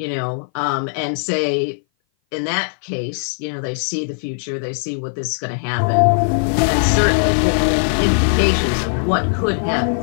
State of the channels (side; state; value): right; silent; 58 dB below the other